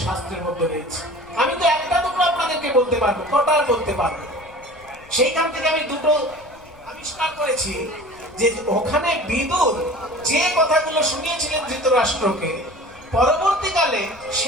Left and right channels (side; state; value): left; noise; rumble, 24 dB below the sound